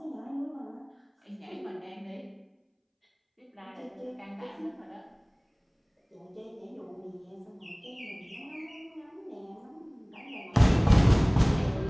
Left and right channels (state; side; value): identical; both; correlation 1.00